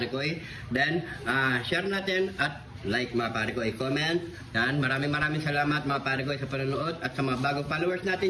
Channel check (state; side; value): identical; both; correlation 1.00